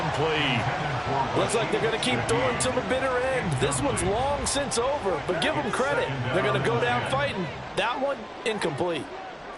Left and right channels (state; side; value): identical; both; correlation 1.00